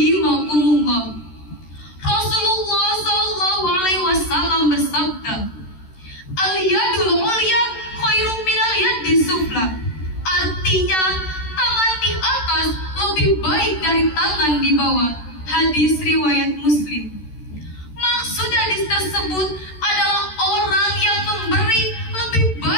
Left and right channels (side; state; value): right; late; 13 ms